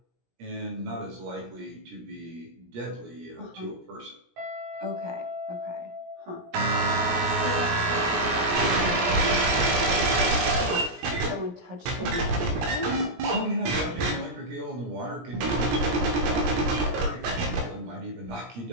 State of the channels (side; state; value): left; late; 17 ms